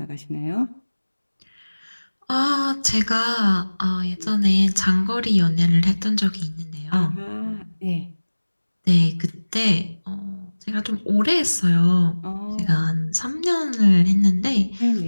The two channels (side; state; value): both; inverted; correlation -1.00